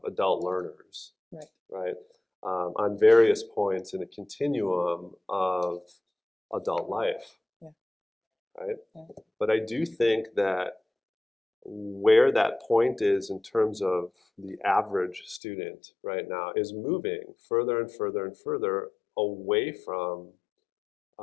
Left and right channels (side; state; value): right; drops out; at 15.4 s